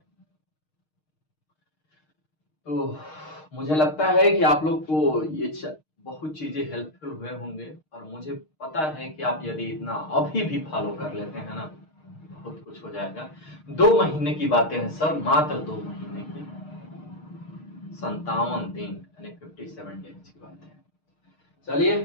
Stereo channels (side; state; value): right; late; 6.5 ms